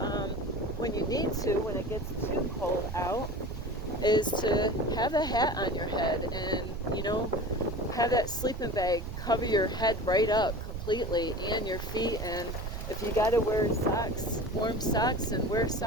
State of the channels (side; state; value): right; noise; rumble, 6 dB below the sound